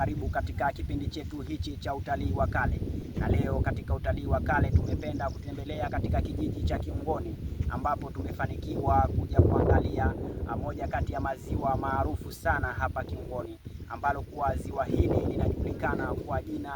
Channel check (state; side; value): identical; both; correlation 1.00